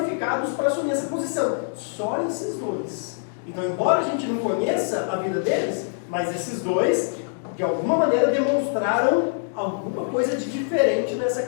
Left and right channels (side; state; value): right; silent; digital silence